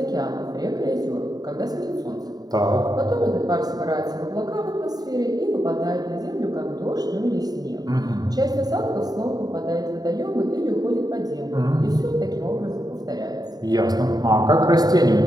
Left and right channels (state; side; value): late; left; 0.19 ms